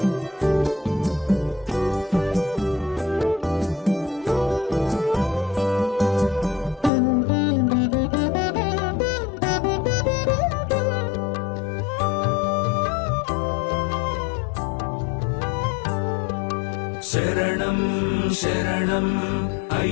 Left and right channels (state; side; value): drops out; right; at 6.9 s